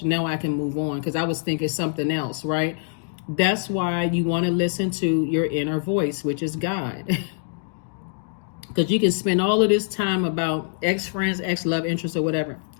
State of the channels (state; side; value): silent; right; digital silence